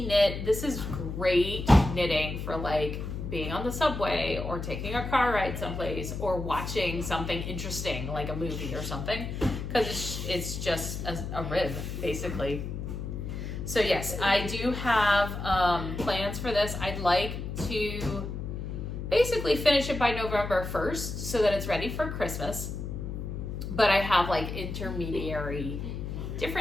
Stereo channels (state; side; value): noise; left; hum, 6 dB below the sound